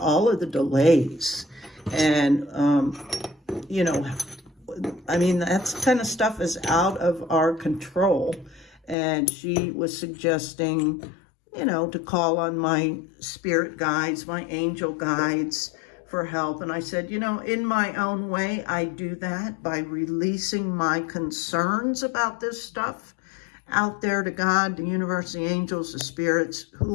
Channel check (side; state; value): right; drops out; at 9.0 s